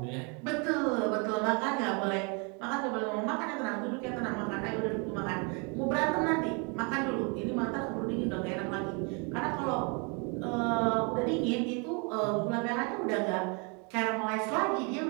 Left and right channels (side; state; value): left; quieter; 33.6 dB